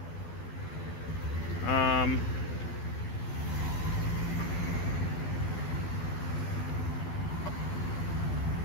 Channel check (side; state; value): right; late; 12 ms